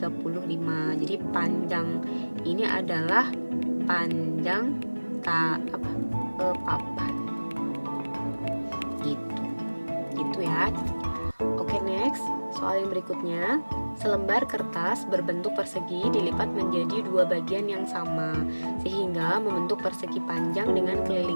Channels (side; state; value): both; inverted; correlation -1.00